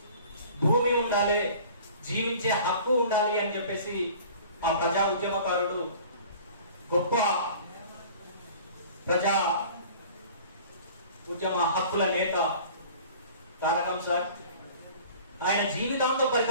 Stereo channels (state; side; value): inverted; both; correlation -0.46